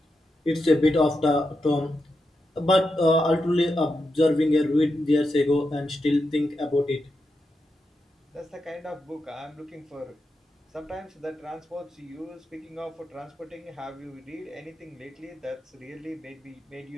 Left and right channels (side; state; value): both; normal; correlation 0.87